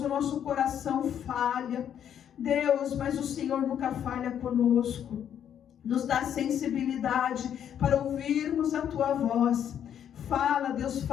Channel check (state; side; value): quieter; right; 9.3 dB